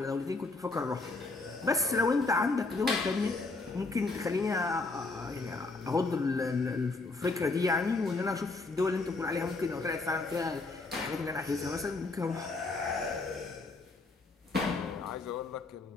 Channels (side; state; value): right; quieter; 3.5 dB